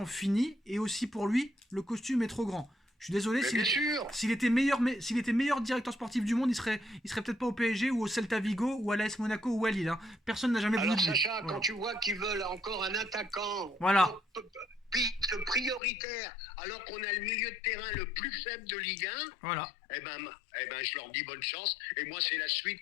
fini, et aussi pour lui, le costume est trop grand. Je suis désolé, s'il était meilleur directeur sportif du monde, il serait peut-être pas au PSG ou au Celta Vigo ou à l'AS Monaco ou à Lille. Hein. Personne n'a jamais voulu. Alors Sacha, quand tu vois qu'ils veulent encore un attaquant prioritaire, alors qu'on a le milieu de terrain le plus faible de Ligue 1, eh ben, je leur dis bonne chance. Et moi, c'est la suite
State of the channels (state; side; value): drops out; right; at 15.8 s